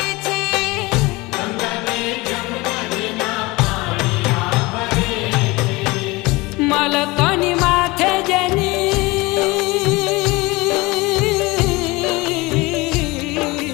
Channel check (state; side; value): quieter; right; 22.9 dB